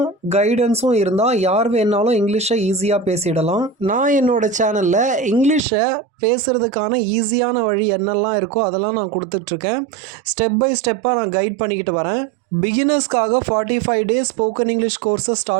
கைடன்ஸும் இருந்தால் யார் வேணாலும் இங்கிலீஷை ஈஸியாக பேசிடலாம். நான் என்னோடய சேனலில் இங்கிலீஷை பேசுகிறதுக்கான ஈஸியான வழி என்னெல்லாம் இருக்கோ அதெல்லாம் நான் கொடுத்துட்ருக்கேன். ஸ்டெப் பை ஸ்டெப்பாக நான் கைட் பண்ணிக்கிட்டு வரேன். பிகினர்ஸ்க்காக 45 டேஸ் ஸ்போக்கன் இங்கிலீஷ் கோர்ஸை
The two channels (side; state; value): left; drops out; at 5.6 s